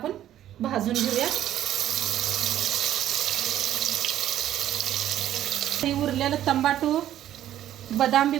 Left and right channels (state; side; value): quieter; left; 12.0 dB